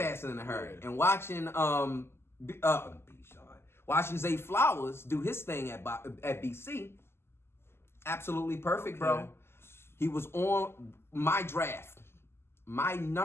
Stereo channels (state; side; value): late; right; 0.12 ms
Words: and in a hurry. And watching watching Zay Flowers do his thing at BC, absolutely perfect, bro. He was on my draft. My